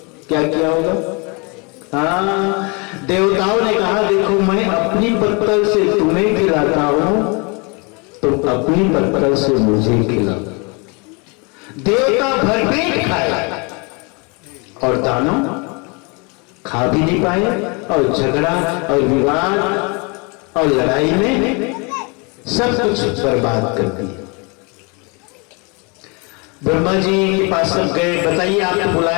क्या किया होगा? हाँ, देवताओं ने कहा देखो मैं अपनी पत्तल से तुम्हें खिलाता हूं, तुम अपनी पत्तल से मुझे खिलाओ। देवता भरपेट खाए और दानव खा भी नहीं पाए, और झगड़ा और विवाद और लड़ाई में सब कुछ बर्बाद कर दिया। ब्रह्मा जी के पास सब गए, बताइए आपको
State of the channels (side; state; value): right; quieter; 31.1 dB